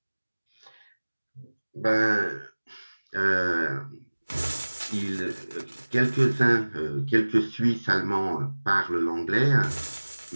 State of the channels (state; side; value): inverted; both; correlation -1.00